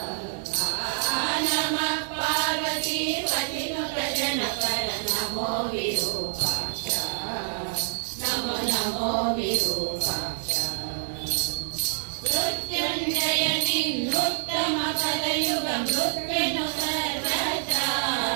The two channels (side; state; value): left; silent; digital silence